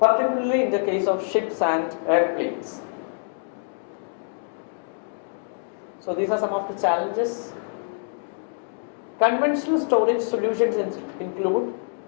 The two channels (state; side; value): silent; right; digital silence